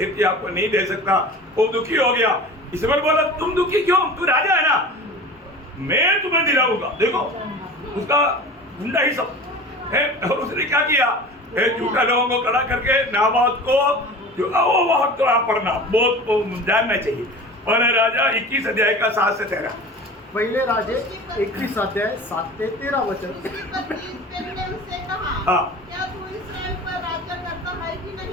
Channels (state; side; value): normal; both; correlation 0.37